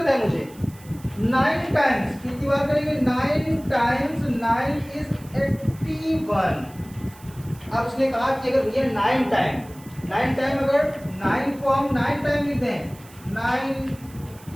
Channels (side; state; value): right; noise; hiss, 23 dB below the sound